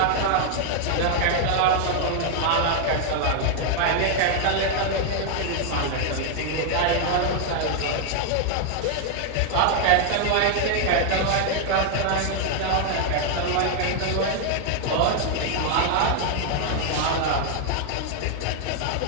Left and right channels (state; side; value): different; both; correlation 0.00